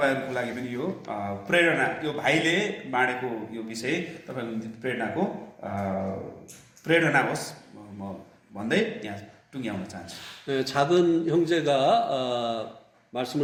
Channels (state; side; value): identical; both; correlation 1.00